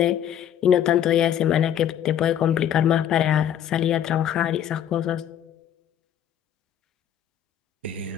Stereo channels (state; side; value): quieter; right; 10.0 dB